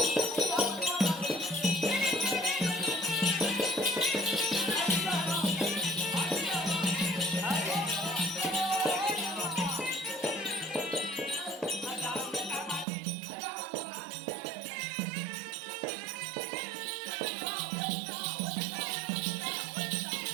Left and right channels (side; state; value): left; drops out; at 12.9 s